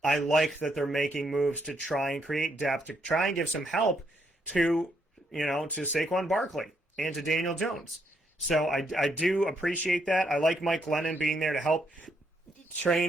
like that they're making moves to try and create depth, to try and give some help to Saquon Barkley and to Daniel Jones. So I do appreciate that. I like Mike Glennon being there to help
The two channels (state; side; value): normal; both; correlation 0.75